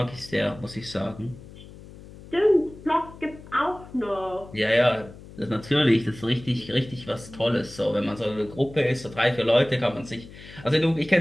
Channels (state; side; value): noise; left; hum, 18 dB below the sound